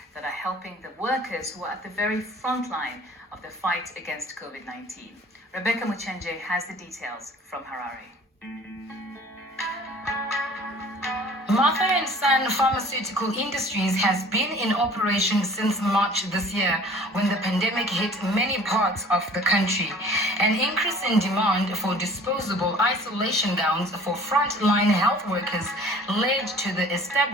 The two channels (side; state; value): both; normal; correlation 0.49